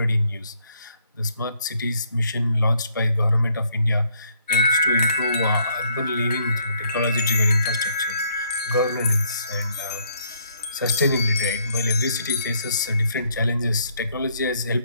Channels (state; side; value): inverted; both; correlation -0.68